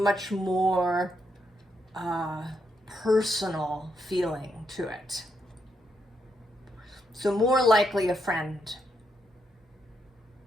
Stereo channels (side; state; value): both; normal; correlation 0.79